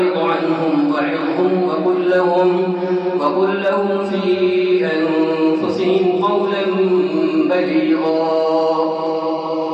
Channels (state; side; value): identical; both; correlation 1.00